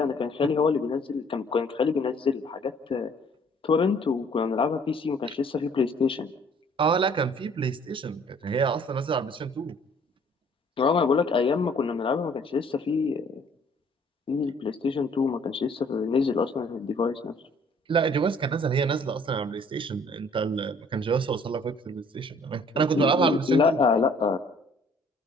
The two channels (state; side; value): normal; both; correlation 0.58